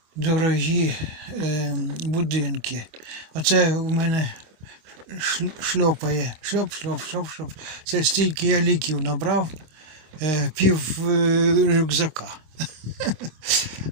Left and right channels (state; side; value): late; left; 26 ms